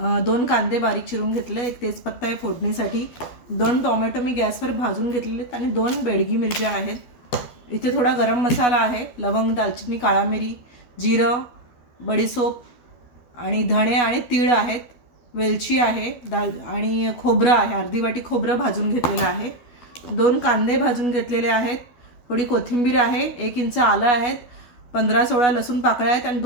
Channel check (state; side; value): late; right; 12 ms